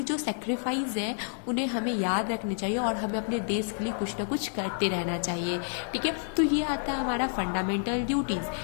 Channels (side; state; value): right; silent; 58 dB below the other